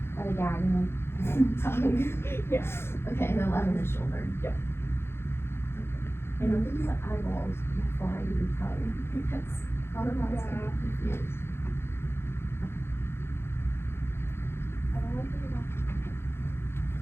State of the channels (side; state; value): right; late; 0.12 ms